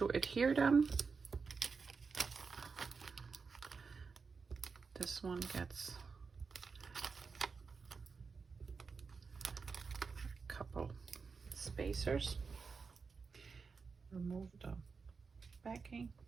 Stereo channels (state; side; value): quieter; left; 5.0 dB